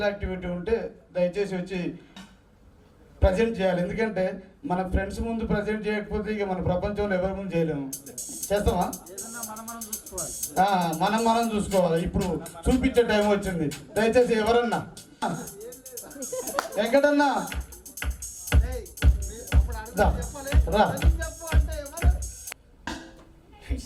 యాక్టివిటీ ఉంటే దయచేసి వచ్చి ప్రజెంట్ చేయాలి. ఎందుకంటే మన ఫ్రెండ్స్ ముందు ప్రజెంట్ చేయకపోతే ఇక మన ప్రపంచంలో ఎవరి ముందు చేయలేము. చేస్తామా? మనం చూసుకోవాలి. ఇప్పుడు చూపించే టైం వచ్చింది. దయచేసి ఎవరన్నా వెంకటన్నా రా.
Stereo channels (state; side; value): identical; both; correlation 1.00